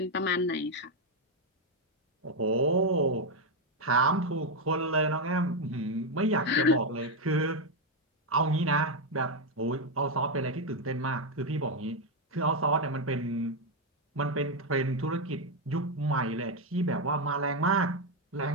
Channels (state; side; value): normal; both; correlation 0.04